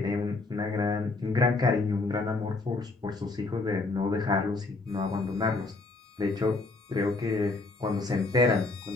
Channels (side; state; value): right; quieter; 3.4 dB